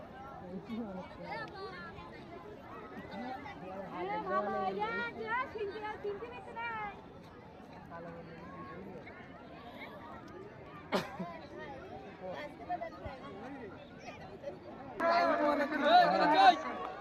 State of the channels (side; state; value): both; identical; correlation 1.00